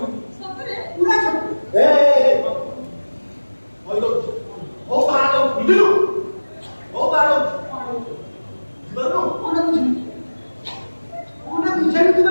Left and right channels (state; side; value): inverted; both; correlation -1.00